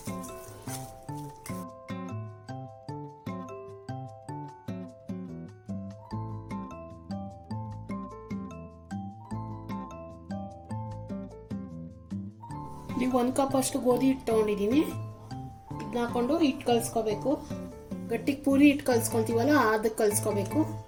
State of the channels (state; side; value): identical; both; correlation 1.00